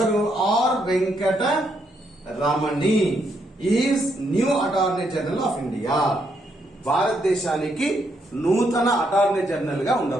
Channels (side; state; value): both; normal; correlation 0.76